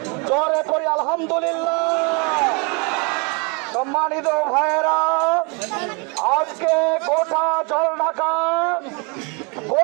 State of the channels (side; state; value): left; quieter; 30.9 dB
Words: জোরে করি আলহামদুলিল্লাহ। সম্মানিত ভাইয়েরা, আজকে গোটা জলঢাকা,